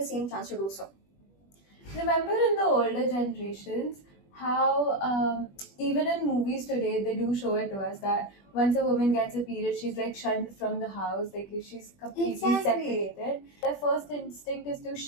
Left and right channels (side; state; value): right; late; 21 ms